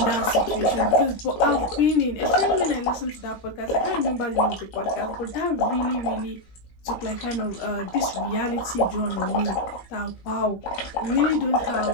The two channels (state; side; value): late; right; 13 ms